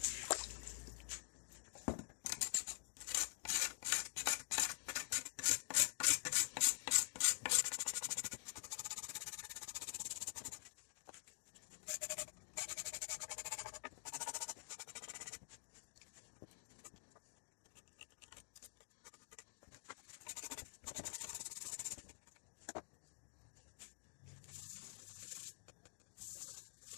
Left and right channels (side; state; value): right; silent; digital silence